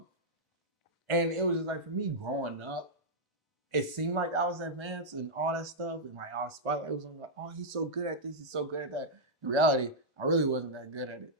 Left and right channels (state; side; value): normal; both; correlation -0.07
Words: And it was just like for me growing up, it seemed like I was advanced and all that stuff, and like our spotlight was on like, oh, he's so good at this, he's so good at that. In reality, I really wasn't that good at it.